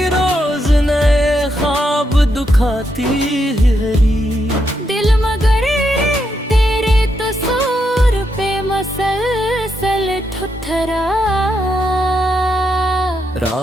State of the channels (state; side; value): normal; both; correlation 0.81